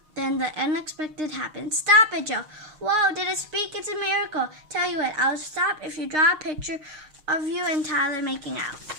the unexpected happens. Stop it, Joe. Whoa, did it speak? It's a miracle. Tell you what, I'll stop if you draw a picture of you and Tyler making out.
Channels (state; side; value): late; left; 6.5 ms